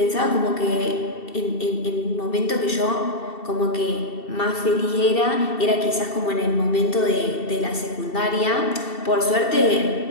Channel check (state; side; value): late; right; 2.7 ms